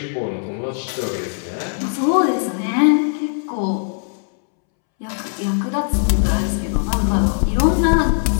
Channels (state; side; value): silent; right; 66 dB below the other